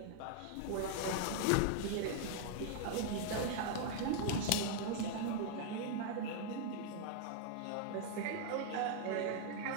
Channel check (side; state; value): both; different; correlation 0.00